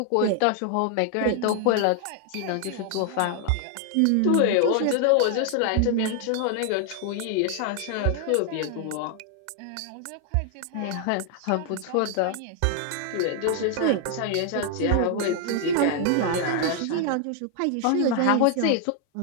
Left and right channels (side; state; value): both; different; correlation 0.00